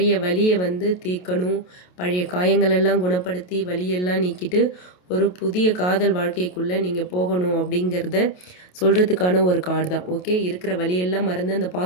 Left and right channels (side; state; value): right; late; 28 ms